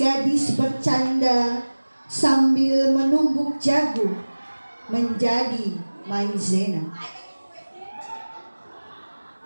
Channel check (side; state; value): both; inverted; correlation -1.00